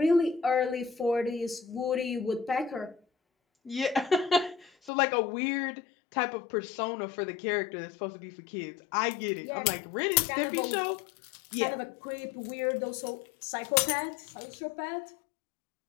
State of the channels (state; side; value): drops out; right; at 4.9 s